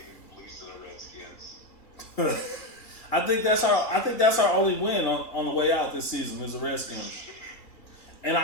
lose to the Redskins. I think that's our only win on the way out this season is the Redskins. And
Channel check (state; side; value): late; right; 2.3 ms